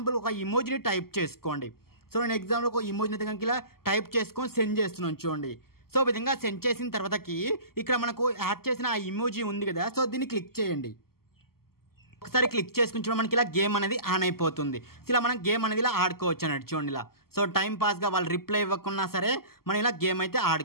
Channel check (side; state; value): right; late; 0.94 ms